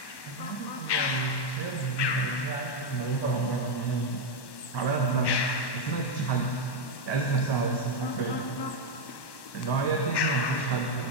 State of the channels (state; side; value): late; right; 1.1 ms